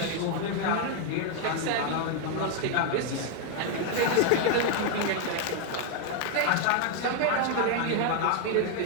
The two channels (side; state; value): both; different; correlation 0.00